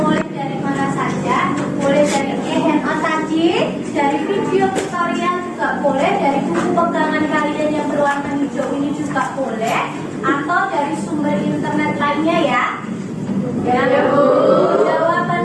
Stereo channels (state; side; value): identical; both; correlation 1.00